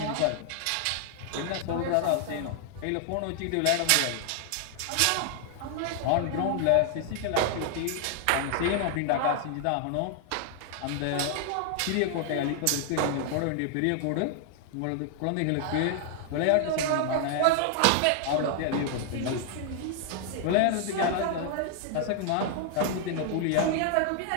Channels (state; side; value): different; both; correlation 0.00